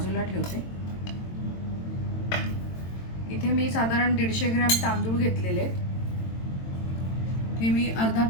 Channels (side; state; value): right; late; 22 ms